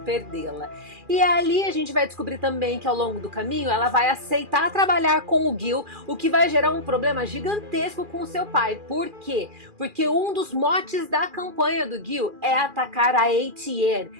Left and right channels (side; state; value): left; late; 2.4 ms